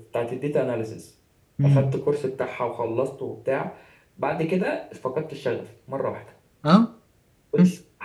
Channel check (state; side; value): identical; both; correlation 1.00